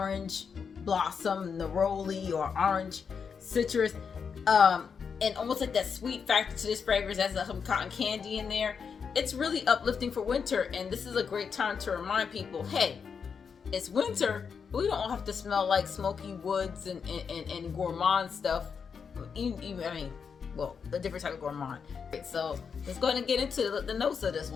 blossom neroli or orange citrus, and almost like that sweet factor to this fragrance. Has some cotton candy in there. It's really uplifting for winter, and this is a great time to remind people, hey, it's winter, but we don't have to smell like smoky woods and gourmand stuff. A different type of gourmand. Right, so let's go ahead and get into the notes of this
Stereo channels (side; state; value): right; quieter; 6.2 dB